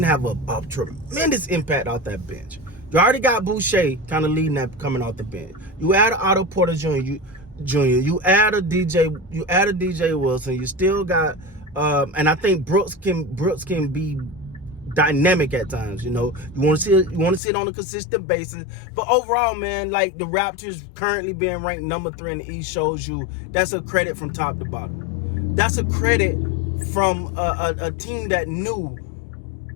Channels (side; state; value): right; drops out; at 17.4 s